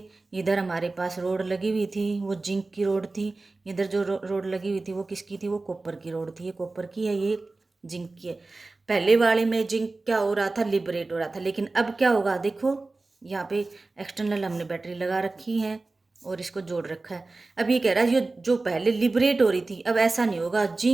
इधर हमारे पास रोड लगी हुई थी, वो जिंक की रोड थी। इधर जो रोड लगी हुई थी वो किसकी थी? वो कॉपर की रोड थी। ये कॉपर की है, ये जिंक की है। पहले वाले में जिंक क्या हो रहा था? लिबरेट हो रहा था। लेकिन अब क्या होगा? देखो यहाँ पे एक्सटर्नल हमने बैटरी लगा रखी है और इसको जोड़ रखा है। अब ये कह रहा है ये जो पहले लिबरेट हो रही थी अब ऐसा नहीं होगा।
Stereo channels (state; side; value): quieter; left; 3.4 dB